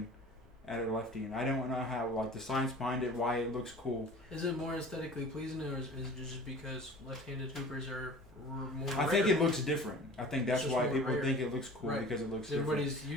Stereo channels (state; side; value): normal; both; correlation 0.42